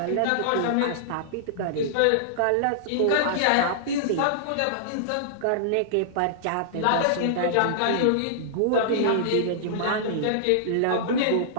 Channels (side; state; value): both; different; correlation -0.02